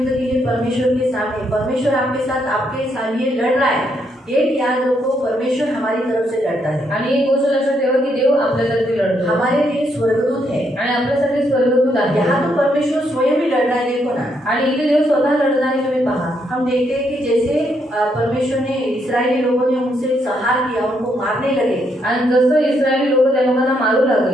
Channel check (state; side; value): normal; both; correlation 0.76